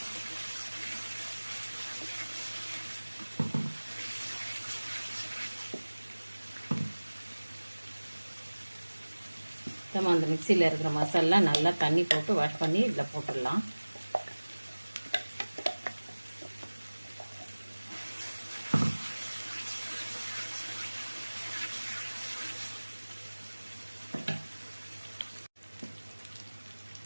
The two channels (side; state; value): both; inverted; correlation -1.00